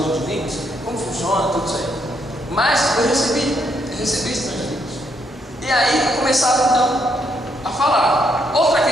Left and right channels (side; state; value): both; normal; correlation 0.75